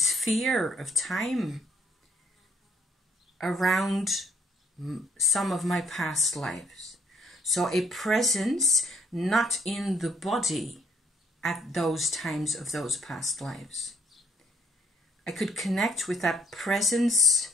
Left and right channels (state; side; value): normal; both; correlation 0.67